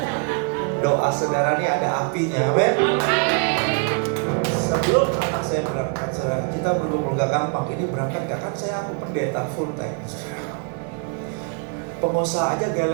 Doa saudara ini ada apinya, amin. Sebelum anak saya berangkat, saudara, kita belum gak gampang. Ini berangkat gak kan saya pendeta full time. Pengusaha aja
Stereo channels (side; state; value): left; quieter; 37.4 dB